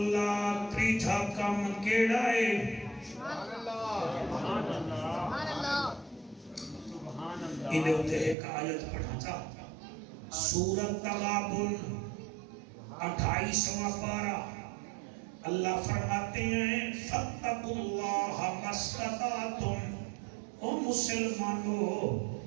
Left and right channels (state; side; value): drops out; left; at 8.3 s